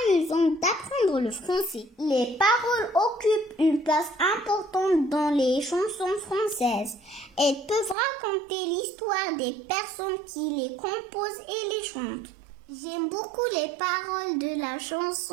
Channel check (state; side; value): drops out; left; at 8.0 s